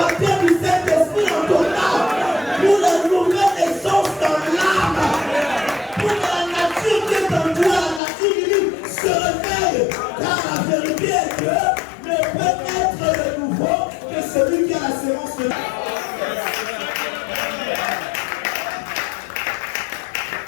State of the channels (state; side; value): drops out; right; at 8.0 s